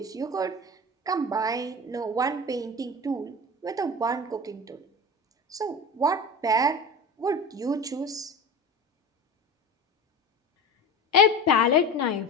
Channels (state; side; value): normal; both; correlation 0.30